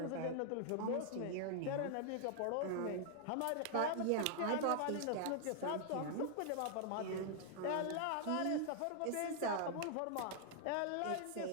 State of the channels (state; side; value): different; both; correlation 0.00